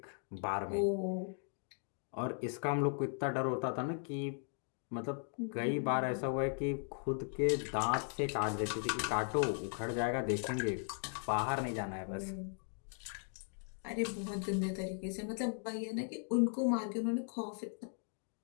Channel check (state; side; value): silent; right; 53 dB below the other